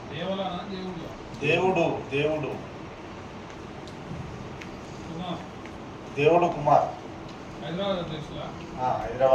దేవుడు దేవుడు దేవుడు కుమార్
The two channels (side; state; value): both; identical; correlation 1.00